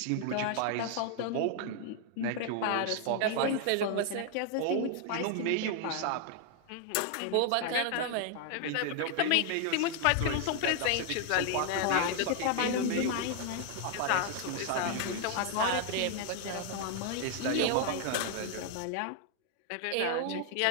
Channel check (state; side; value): different; both; correlation 0.00